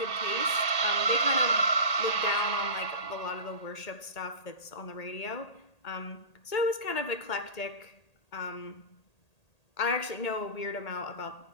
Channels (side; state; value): right; late; 1.8 ms